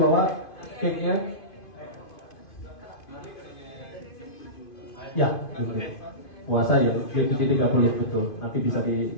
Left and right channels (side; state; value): right; late; 2.5 ms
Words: cake-nya? Ya, betul. Puasa ya, 7.30 betul. Nanti bisa